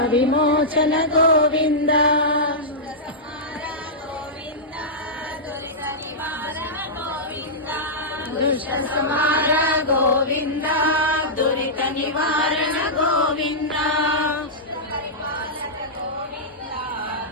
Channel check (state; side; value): normal; both; correlation -0.12